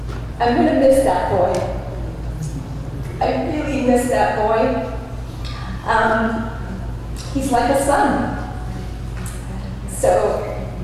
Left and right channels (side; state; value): both; identical; correlation 1.00